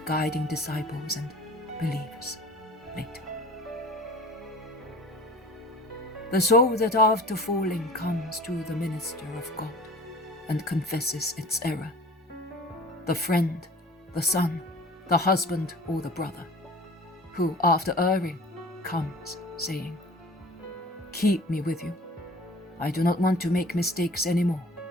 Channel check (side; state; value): both; normal; correlation 0.44